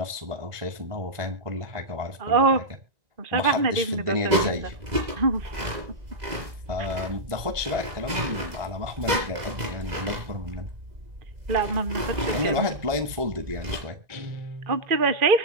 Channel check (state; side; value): late; left; 1.9 ms